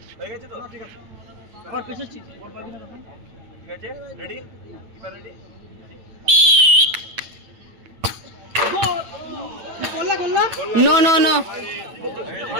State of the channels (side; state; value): left; late; 8.9 ms